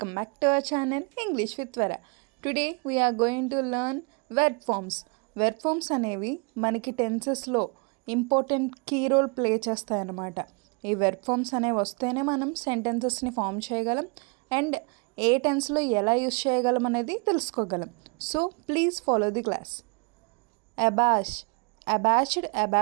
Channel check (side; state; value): left; quieter; 31.9 dB